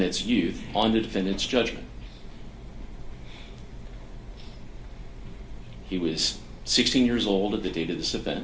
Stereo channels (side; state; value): both; identical; correlation 1.00